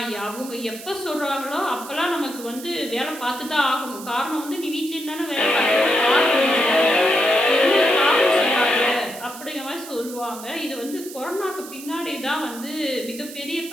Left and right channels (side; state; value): right; noise; hiss, 14 dB below the sound